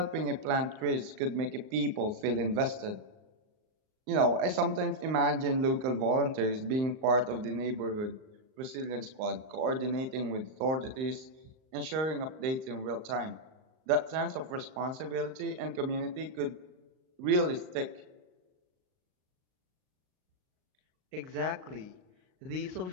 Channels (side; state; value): left; late; 38 ms